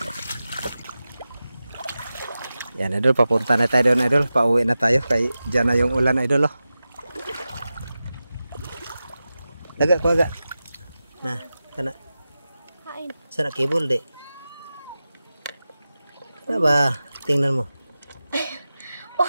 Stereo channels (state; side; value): inverted; both; correlation -0.94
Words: Yan idol, papunta na tayo doon idol. Pauwi na tayo kay dyan na yung ulan idol oh. Laga ko aga. Nah, kana. Kain. Sana kibol de. Ano ba? Tingnan mo.